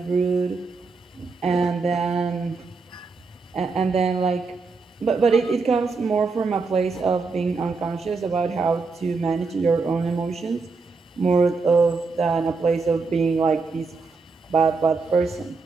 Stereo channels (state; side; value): quieter; left; 4.3 dB